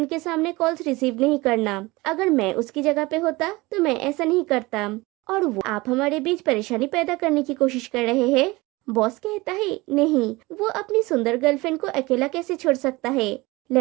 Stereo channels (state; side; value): quieter; left; 21.9 dB